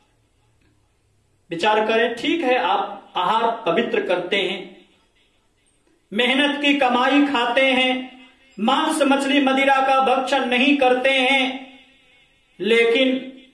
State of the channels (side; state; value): both; identical; correlation 1.00